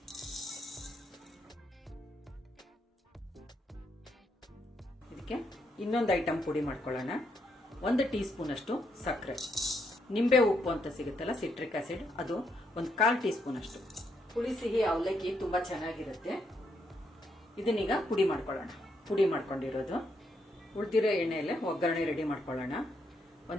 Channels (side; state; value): both; normal; correlation 0.77